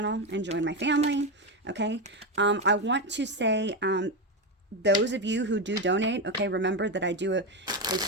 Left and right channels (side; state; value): both; normal; correlation 0.12